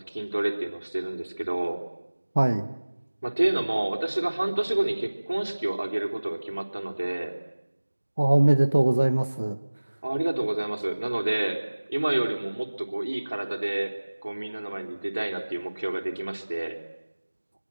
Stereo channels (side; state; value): both; inverted; correlation -1.00